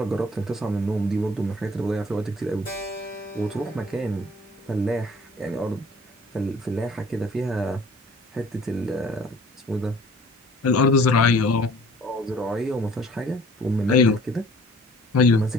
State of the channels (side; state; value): both; normal; correlation 0.52